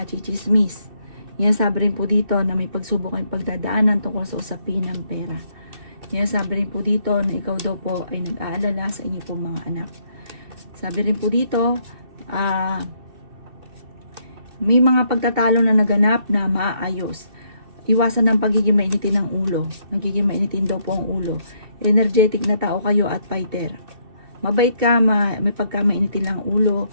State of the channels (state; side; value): late; left; 2.6 ms